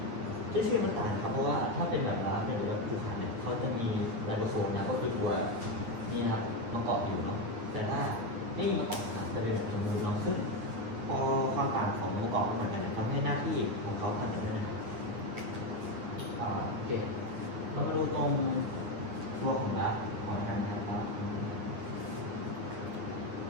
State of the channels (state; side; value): late; left; 9.4 ms